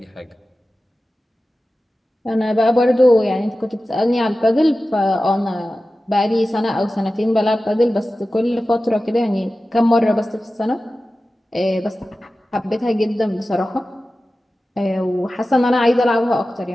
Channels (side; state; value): both; normal; correlation 0.95